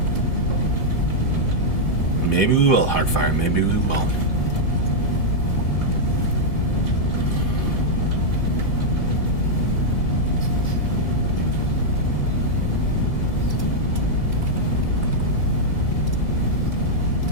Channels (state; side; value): late; right; 1.9 ms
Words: Maybe we will, Heartfire. Maybe we will.